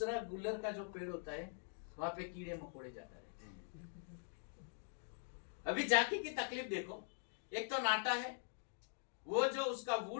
गुल्लर का जो पेड़ होता है वहां पे कीड़े मकोड़े जाता रहते हैं। अभी जाकी की तकलीफ देखो, एक तो नाटा है, वो जो उसका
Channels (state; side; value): silent; right; digital silence